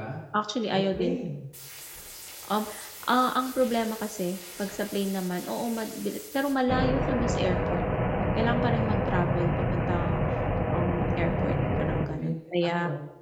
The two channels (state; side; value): identical; both; correlation 1.00